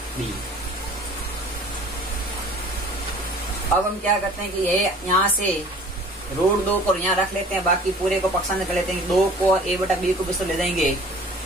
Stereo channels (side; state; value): both; normal; correlation 0.48